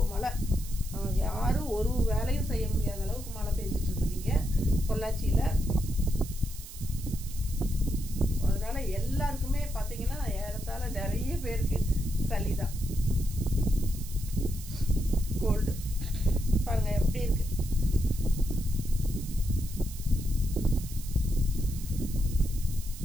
மழை. யாரும் ஒரு வேலையும் செய்ய முடியாத அளவுக்கு மழை பெஞ்சிட்டு இருக்குதுங்க பொள்ளாச்சியில். அதனால எல்லாருக்குமே பார்த்தீங்கன்னா ஏறத்தாழ நிறைய பேருக்கு சளி தான், கோல்டு. பாருங்க எப்படி இருக்கு.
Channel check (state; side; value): noise; right; hiss, 14 dB below the sound